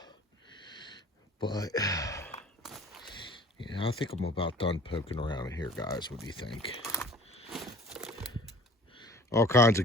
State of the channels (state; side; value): normal; both; correlation 0.47